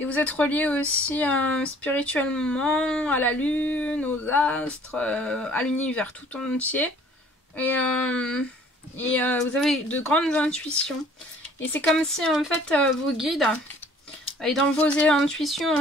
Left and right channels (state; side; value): normal; both; correlation 0.55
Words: Et vous êtes reliés aussi spirituellement à la lune, aux astres, à l'univers tout entier. Et vous avez de grandes intuitions. Et c'est comme si en fait vos guides, et dans vos intuitions